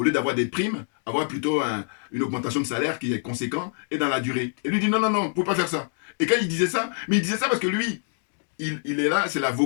lieu d'avoir des primes, avoir plutôt une augmentation de salaire qui est conséquente et dans la durée. Et lui dit non, non, non, vous ne pouvez pas faire ça. Et quand il disait ça, mais il disait ça parce que lui, il est là, c'est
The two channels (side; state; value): right; silent; 61 dB below the other